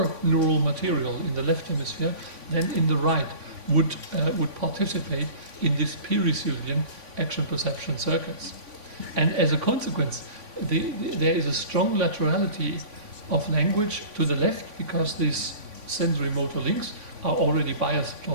neural material in the left hemisphere than in the right would participate in this pericilian action perception circuits. And as a consequence, there is a strong laterality of language to the left because these sensory motor links are already biased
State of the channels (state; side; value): late; left; 3.5 ms